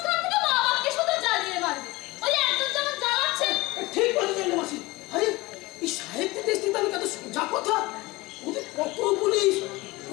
থেকে মা বাপকে শুধু জ্বালিয়ে মারবে। ওই একজন যেমন জ্বালাচ্ছে। ঠিক বলেছেন মাসি। আরে এই সাহিত্যের দেশ থেকে আমি কত সোজা কথা, ওদের কত পুলিশ,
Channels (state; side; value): quieter; right; 21.4 dB